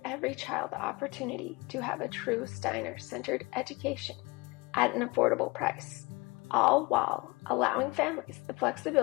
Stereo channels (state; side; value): quieter; right; 25.4 dB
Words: every child the opportunity to have a true Steiner-centered education at an affordable price, all while allowing families the